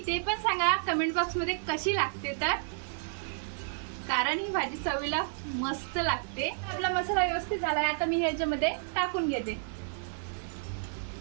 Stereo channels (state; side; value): silent; left; 57 dB below the other